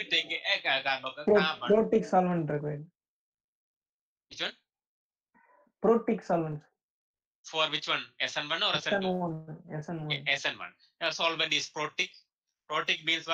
take a carbon. Protic solvent required. Which one? Protic solvent. For which one? SN1 or SN2? SN1. SN1. The solvent is protic. Protic means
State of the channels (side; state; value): both; identical; correlation 1.00